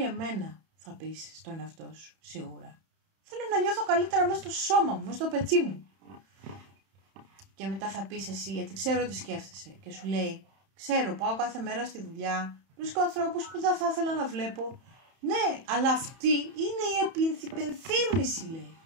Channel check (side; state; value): left; late; 31 ms